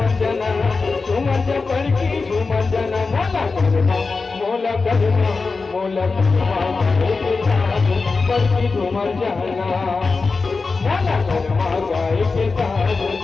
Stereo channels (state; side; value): quieter; right; 4.2 dB